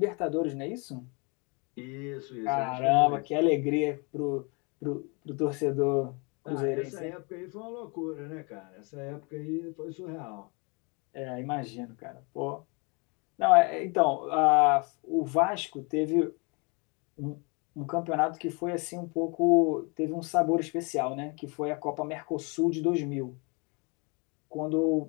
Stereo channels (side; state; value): right; quieter; 31.6 dB